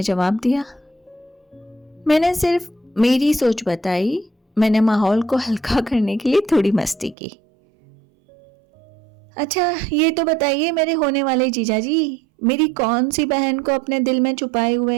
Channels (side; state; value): left; drops out; at 7.2 s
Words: जवाब दिया। मैंने सिर्फ मेरी सोच बताई, मैंने माहौल को हल्का करने के लिए थोड़ी मस्ती की। अच्छा ये तो बताइए मेरे होने वाले जीजाजी, मेरी कौन सी बहन को अपने दिल में छुपाए हुए